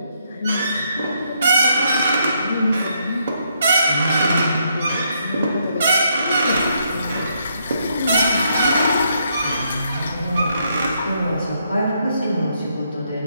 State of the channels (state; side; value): inverted; both; correlation -0.75